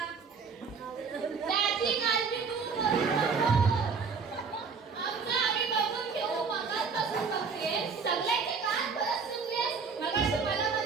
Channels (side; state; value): left; quieter; 5.3 dB